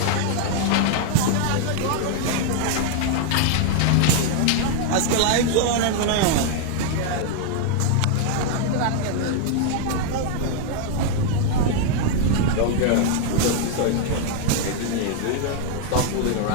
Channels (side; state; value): both; different; correlation 0.00